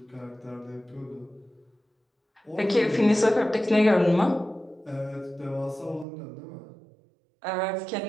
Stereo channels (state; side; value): drops out; left; at 6.1 s